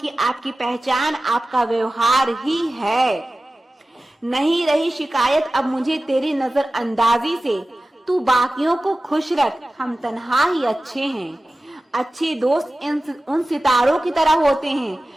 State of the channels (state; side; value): normal; both; correlation 0.96